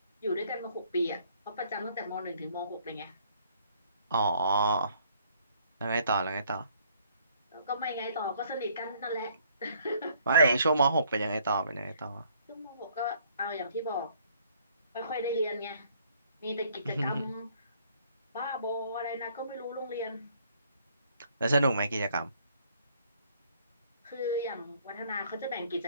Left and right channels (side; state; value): both; inverted; correlation -0.63